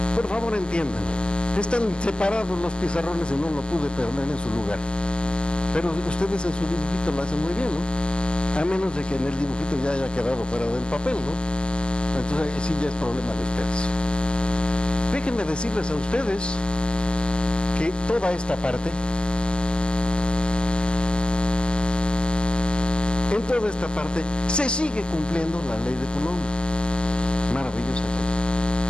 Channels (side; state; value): right; late; 0.048 ms